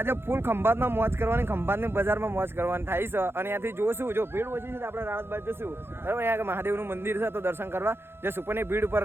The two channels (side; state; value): left; late; 0.11 ms